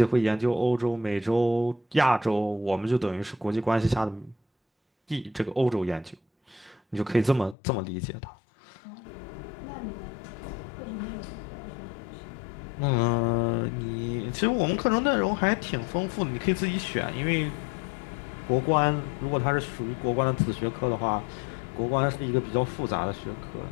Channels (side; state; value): right; drops out; at 7.6 s